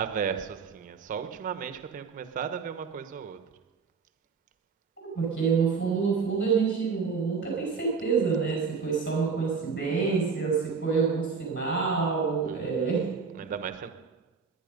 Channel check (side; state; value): left; quieter; 5.3 dB